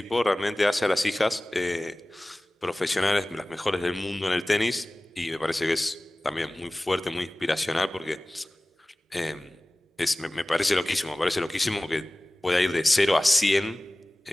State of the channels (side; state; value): both; normal; correlation 0.98